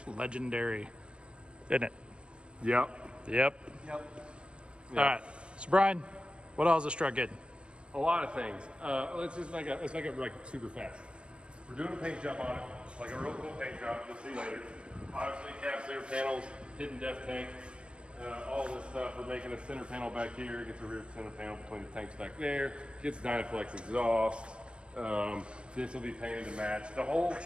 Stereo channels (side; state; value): left; late; 0.057 ms